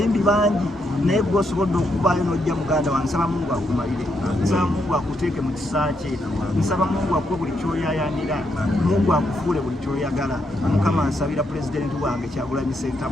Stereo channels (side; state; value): both; normal; correlation 0.78